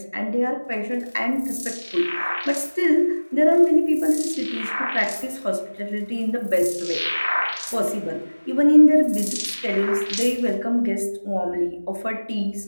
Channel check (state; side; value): inverted; both; correlation -1.00